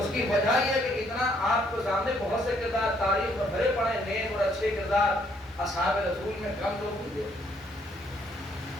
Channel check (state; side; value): normal; both; correlation 0.68